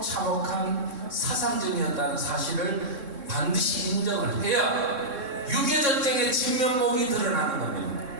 참혹한 사상전이었다는 사실을 반드시 인정을 해야 6.25 전쟁의 진면목이 드러나는 겁니다.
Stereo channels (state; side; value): late; left; 3.6 ms